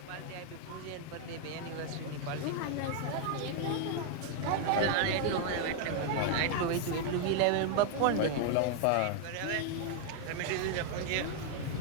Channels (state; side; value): different; both; correlation 0.00